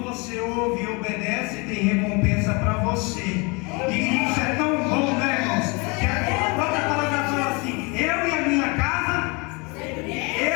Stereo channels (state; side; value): quieter; right; 29.0 dB